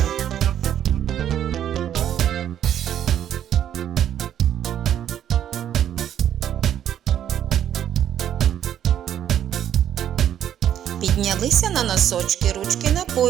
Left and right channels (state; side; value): quieter; left; 10.3 dB